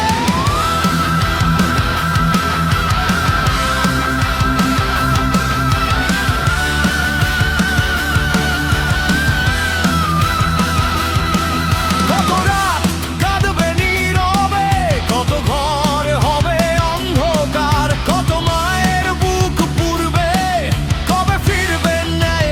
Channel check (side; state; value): both; identical; correlation 1.00